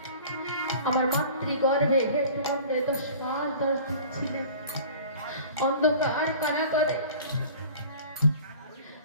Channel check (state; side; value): inverted; both; correlation -0.44